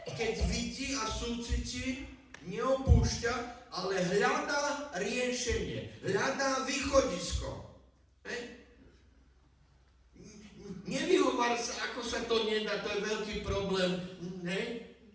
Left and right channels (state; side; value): identical; both; correlation 1.00